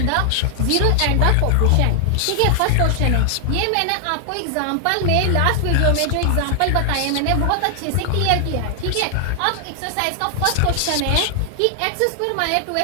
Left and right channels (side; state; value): both; different; correlation 0.00